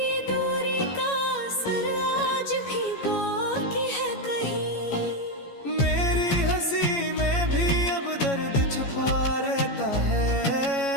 दूरी का असर आज भी बाकी है कहीं। मेरी हंसी में भी अब दर्द छुपा रहता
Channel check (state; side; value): late; right; 14 ms